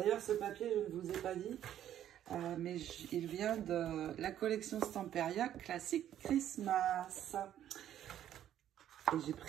ce papier, je ne vous ai pas dit, mais il vient de la collection Stamperia Classic Christmas. Et j'ai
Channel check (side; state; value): left; quieter; 11.1 dB